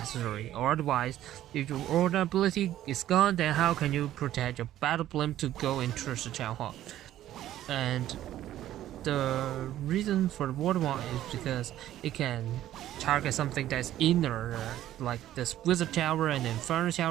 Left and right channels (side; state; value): left; quieter; 13.0 dB